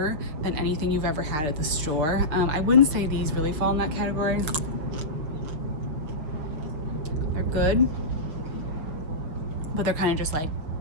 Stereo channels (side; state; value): left; late; 6.8 ms